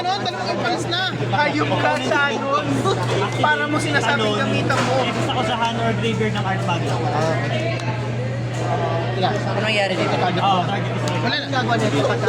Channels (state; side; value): identical; both; correlation 1.00